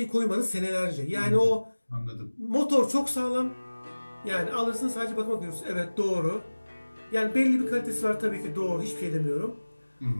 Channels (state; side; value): inverted; both; correlation -1.00